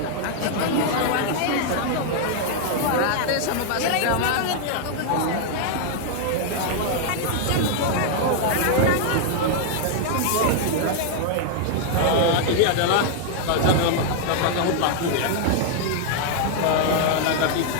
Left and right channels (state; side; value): different; both; correlation 0.00